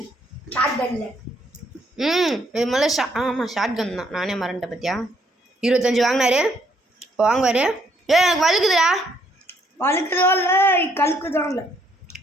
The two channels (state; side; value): normal; both; correlation 0.69